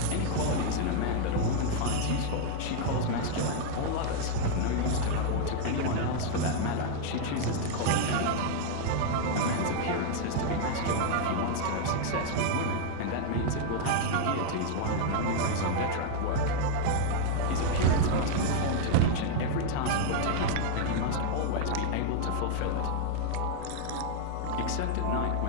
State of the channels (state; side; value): different; both; correlation 0.00